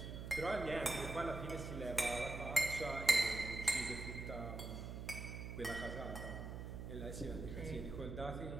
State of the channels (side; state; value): right; noise; hum, 6 dB below the sound